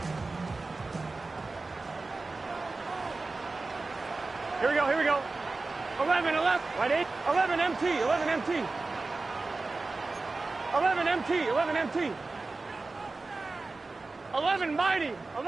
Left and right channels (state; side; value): quieter; left; 3.6 dB